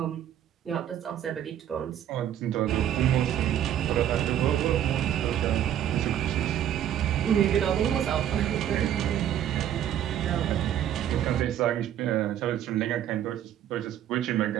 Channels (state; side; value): quieter; left; 10.7 dB